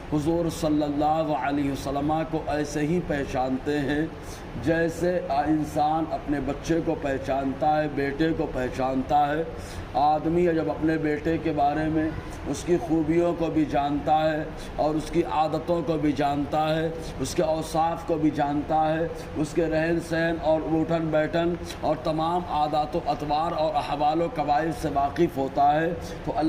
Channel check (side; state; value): both; identical; correlation 1.00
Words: حضور صلی اللہ علیہ وسلم کو ایسے ہی پہچانتے ہیں جیسے انسان اپنے بچے کو پہچانتا ہے، بیٹے کو پہچانتا ہے۔ آدمی جب اپنے بیٹے کے بارے میں اس کی خوبیوں کو بھی جانتا ہے اور اس کی عادتوں کو بھی جانتا ہے، اس کے اوصاف کو بھی جانتا ہے، اس کے رہن سہن اور اٹھن بیٹھن اور تمام عادات و اطوار اور احوال و قواعد سے واقف ہوتا ہے، تو